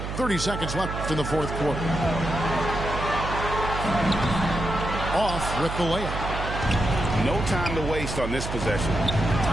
30 seconds left in the fourth quarter. Off with the layup. No time to waste on this possession.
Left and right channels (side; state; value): right; noise; hum, 5 dB below the sound